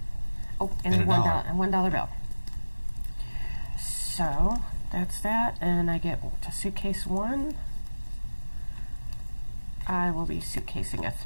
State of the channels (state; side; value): inverted; both; correlation -1.00